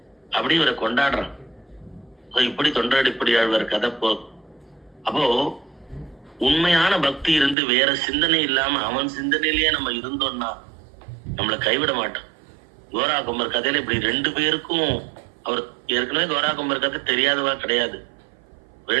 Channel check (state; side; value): drops out; left; at 7.6 s